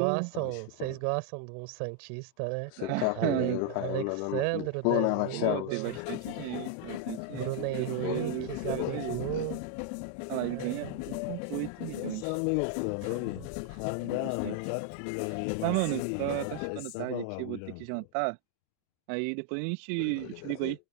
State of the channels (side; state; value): both; different; correlation 0.00